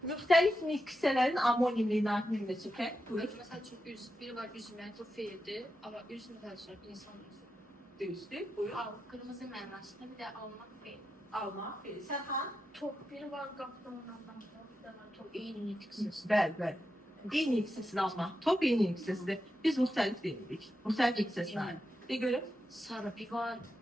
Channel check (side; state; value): both; normal; correlation 0.88